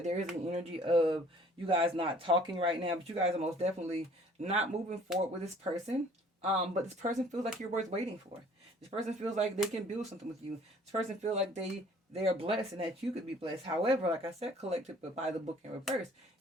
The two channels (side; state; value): both; normal; correlation 0.55